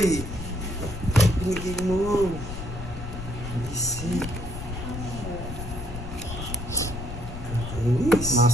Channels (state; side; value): noise; left; rumble, 8 dB below the sound